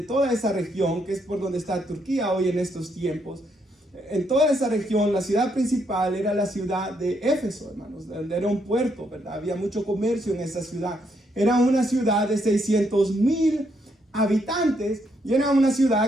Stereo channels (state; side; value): normal; both; correlation 0.75